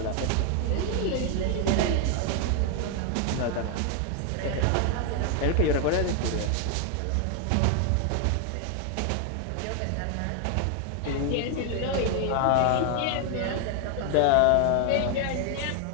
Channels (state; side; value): different; both; correlation 0.00